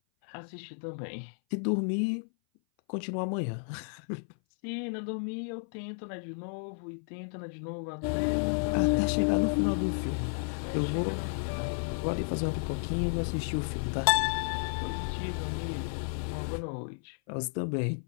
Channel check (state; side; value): silent; right; 56 dB below the other